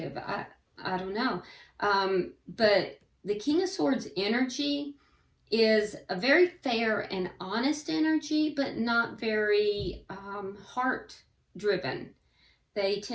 I don't know. But the King of Swords energy is a very fair and honest energy, but not very heart driven. They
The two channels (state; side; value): identical; both; correlation 1.00